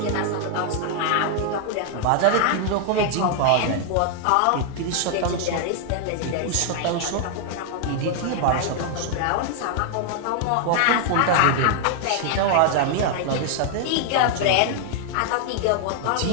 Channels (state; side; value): different; both; correlation 0.00